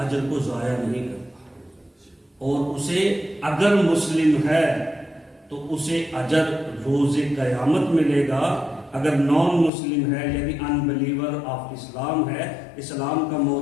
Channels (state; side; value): drops out; right; at 9.7 s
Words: اجر کو ضائع نہیں کرتا اور اسے اگر مسلم ہے تو اسے اجر روز قیامت ملے گا. اگر نان مسلم ہے یعنی ان بلیور آف اسلام ہے، اسلام کا